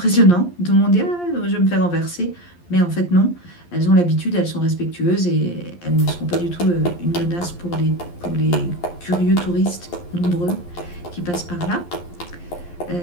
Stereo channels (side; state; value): right; late; 11 ms